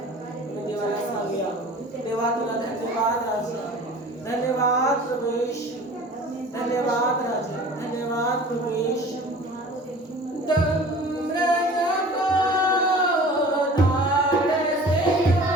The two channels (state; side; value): normal; both; correlation 0.43